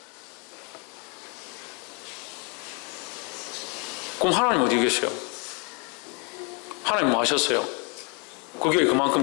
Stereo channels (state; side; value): quieter; right; 34.4 dB